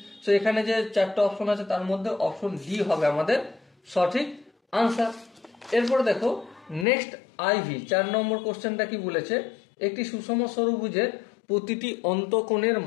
সো এখানে যে চারটা অপশন আছে তার মধ্যে অপশন ডি হবে আমাদের সঠিক আনসার। এরপরে দেখো নেক্সট আইভি 4 নম্বর কোশ্চেনটা কি বলেছে? একটি সুষম ষড়ভুজের প্রতিটি অন্তঃকোণের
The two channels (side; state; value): right; drops out; at 6.9 s